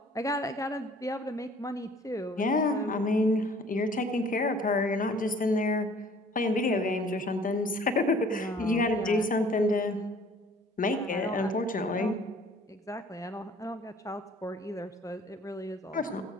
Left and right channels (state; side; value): normal; both; correlation 0.53